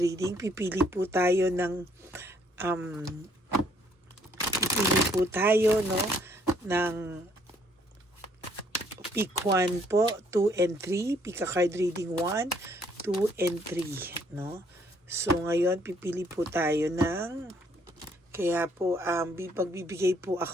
Um, pipili po tayo, no, ng pick 1 po, 2 and 3, pick a card reading 1, 2 and 3, no. So ngayon pipili po tayo kaya po, pagbibigay po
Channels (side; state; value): both; normal; correlation 0.66